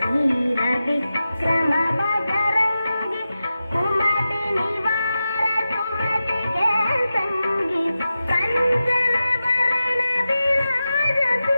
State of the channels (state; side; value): inverted; both; correlation -0.92